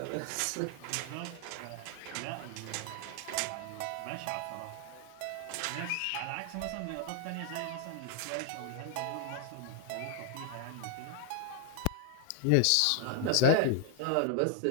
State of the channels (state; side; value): different; both; correlation -0.01